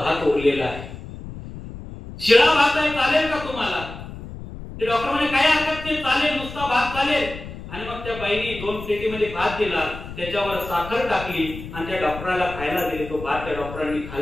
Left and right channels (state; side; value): noise; left; rumble, 12 dB below the sound